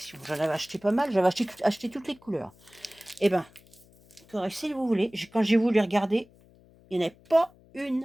J'en avais acheté pas mal. J'avais acheté toutes les couleurs. Eh ben, si vous voulez, quand j'ai voulu regarder, il n'y en avait pas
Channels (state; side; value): noise; left; hum, 27 dB below the sound